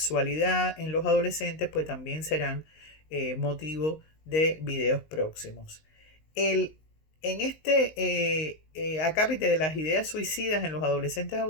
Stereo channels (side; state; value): right; late; 19 ms